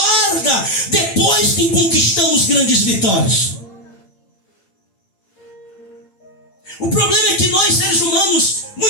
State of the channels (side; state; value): right; late; 9.0 ms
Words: depois que conquistamos grandes vitórias. O problema é que nós, seres humanos,